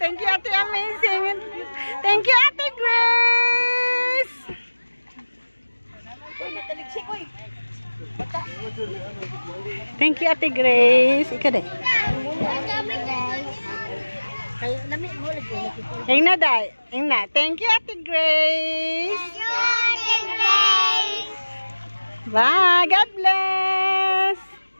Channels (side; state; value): both; inverted; correlation -1.00